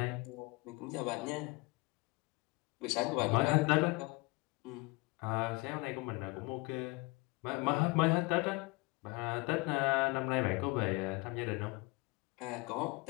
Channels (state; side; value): quieter; right; 25.4 dB